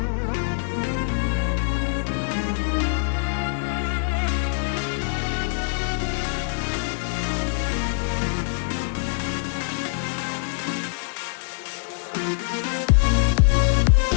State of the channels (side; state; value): right; silent; digital silence